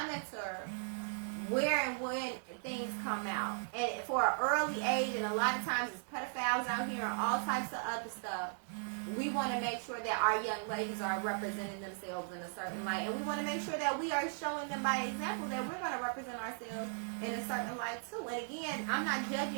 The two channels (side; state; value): left; silent; digital silence